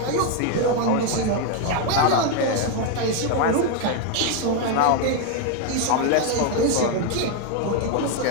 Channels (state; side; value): different; both; correlation 0.01